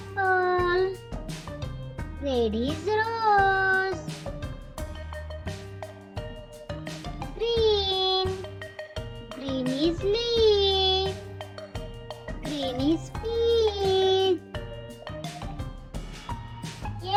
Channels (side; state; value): both; identical; correlation 1.00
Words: Red is rose. Green. Green is leaf. Green is peach.